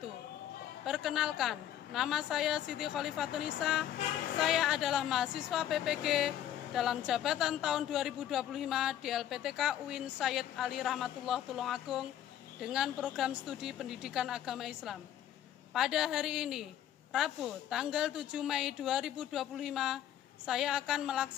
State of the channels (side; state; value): right; quieter; 11.2 dB